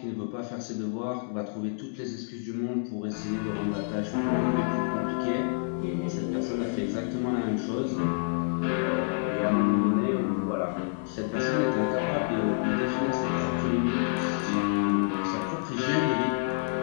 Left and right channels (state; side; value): silent; right; digital silence